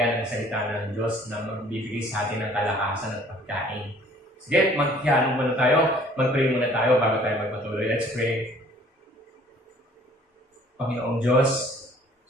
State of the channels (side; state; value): both; normal; correlation 0.55